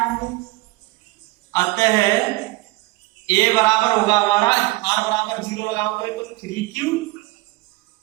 होंगे, अतः a बराबर होगा हमारा, r बराबर 0 लगाओगे तो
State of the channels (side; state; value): left; quieter; 21.2 dB